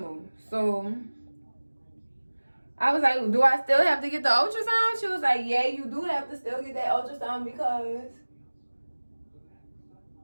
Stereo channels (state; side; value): inverted; both; correlation -1.00